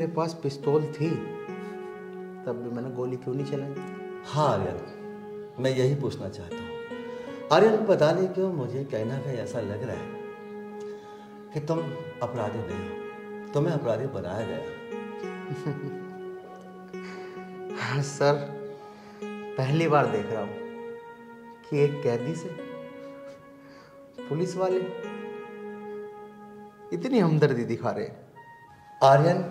पास पिस्तौल थी तब भी मैंने गोली क्यों नहीं चलाई? हाँ आर्यन, मैं यही पूछना चाहता हूँ। आर्यन, पता नहीं क्यों मुझे कहीं ना कहीं ऐसा लग रहा है कि तुम अपराधी नहीं हो, तुम्हें अपराधी बनाया गया। हाँ सर, पहली बार देख रहा हूँ कि एक कैदी से पुलिस वाले इतनी हमदर्दी दिखा रहे हैं। आर्यन,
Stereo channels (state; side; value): identical; both; correlation 1.00